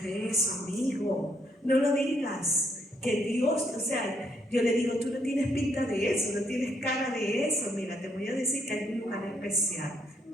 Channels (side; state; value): both; normal; correlation 0.72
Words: eso, amigo, no lo digas. Que Dios, o sea, yo le digo, tú no tienes pinta de eso, no tienes cara de eso. Mira, te voy a decir que hay un lugar especial